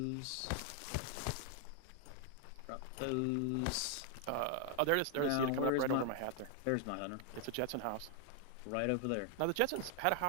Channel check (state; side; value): different; both; correlation 0.00